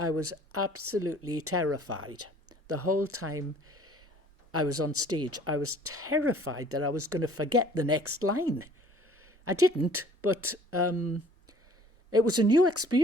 was absolutely terrified. The whole time I was on stage, I was terrified that I was going to forget the next line. I didn't, but it was a new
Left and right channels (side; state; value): both; normal; correlation 0.54